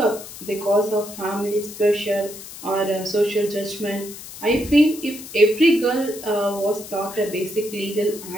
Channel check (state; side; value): noise; left; hiss, 14 dB below the sound